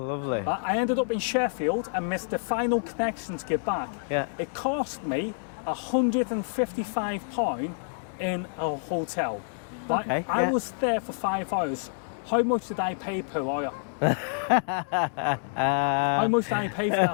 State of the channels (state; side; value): silent; right; 60 dB below the other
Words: lovely. I ended up in Sheffield and missed the final connection to get back. Yeah. It cost me £155 in a hotel. Right? Okay, I was there for 5 hours. How much did I pay per hour? How much did I pay for